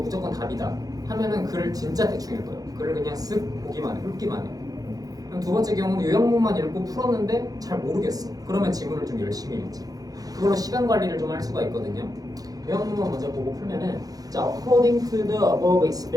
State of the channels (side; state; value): left; late; 0.18 ms